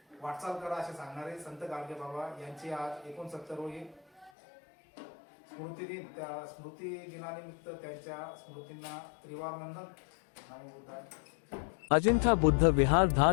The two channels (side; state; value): right; drops out; at 4.3 s